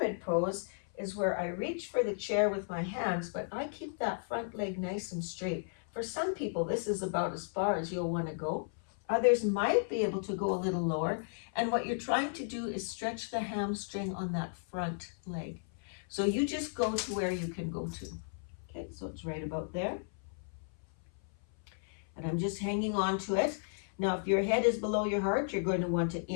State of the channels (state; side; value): silent; right; 55 dB below the other